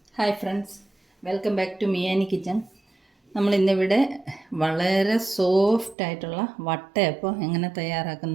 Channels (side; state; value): left; drops out; at 6.0 s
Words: Hi friends, welcome back to Miyani kitchen. നമ്മളിന്നിവിടെ വളരെ soft ആയിട്ടുള്ള വട്ടയപ്പം എങ്ങനെ